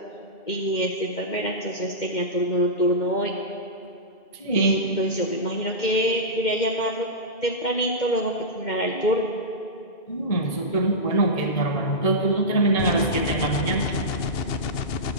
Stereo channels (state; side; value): late; right; 1.8 ms